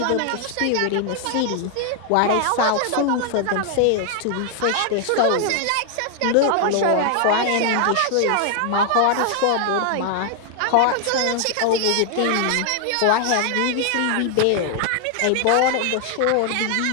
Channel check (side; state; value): both; different; correlation 0.00